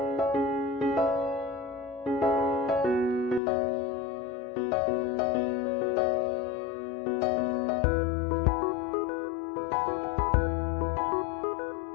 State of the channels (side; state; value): right; drops out; at 3.4 s